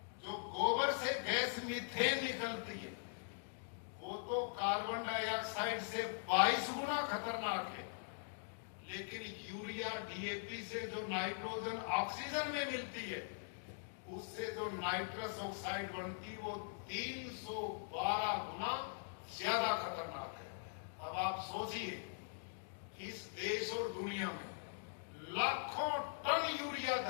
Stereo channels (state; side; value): silent; right; digital silence